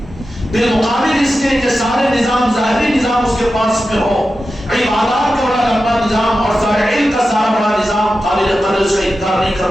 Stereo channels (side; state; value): both; normal; correlation 0.92